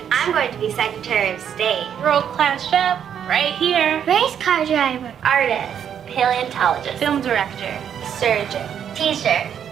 I'm going to be Secretary of State. World-class chef, right here. Race car driver. Artist. Paleontologist. Film director. Surgeon. Teacher.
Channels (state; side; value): quieter; left; 8.7 dB